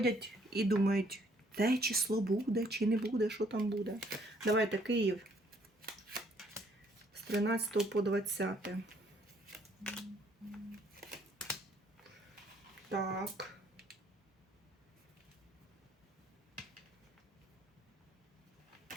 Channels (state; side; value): normal; both; correlation 0.65